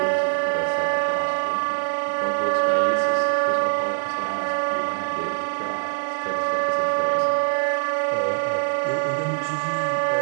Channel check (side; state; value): left; silent; digital silence